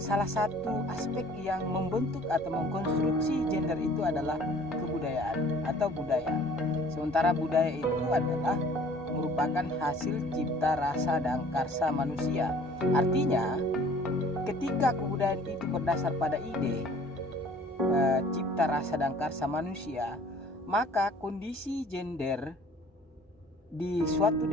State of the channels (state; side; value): normal; both; correlation 0.52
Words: satu aspek yang membentuk atau mengkonstruksi gender itu adalah kebudayaan atau budaya. Sementara budaya itu adalah merupakan hasil cipta rasa dan karsa manusia. Artinya, ketika kebudayaan itu berdasar pada ide cipta rasa dan karsa manusia, maka kondisi gender di suatu